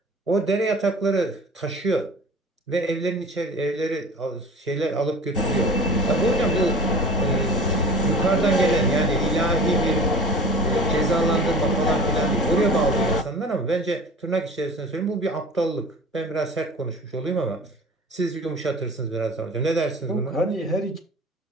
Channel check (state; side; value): normal; both; correlation 0.40